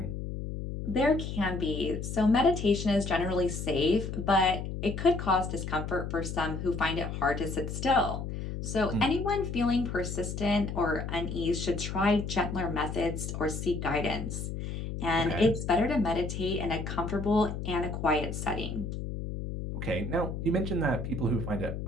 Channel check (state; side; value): noise; left; hum, 5 dB below the sound